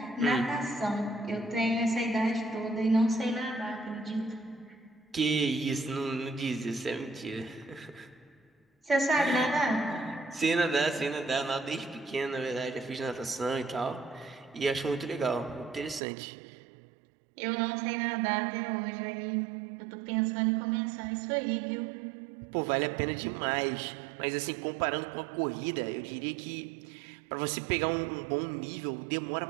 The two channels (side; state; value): left; drops out; at 16.0 s